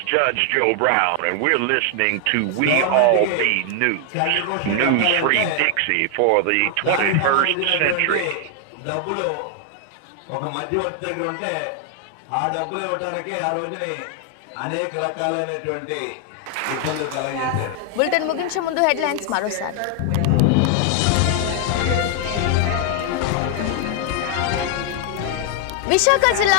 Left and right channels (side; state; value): both; different; correlation 0.00